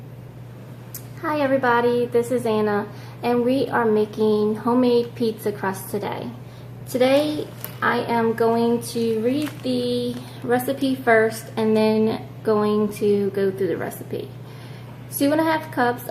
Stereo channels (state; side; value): identical; both; correlation 1.00